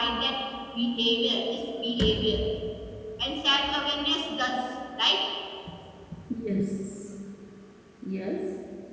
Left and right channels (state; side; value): identical; both; correlation 1.00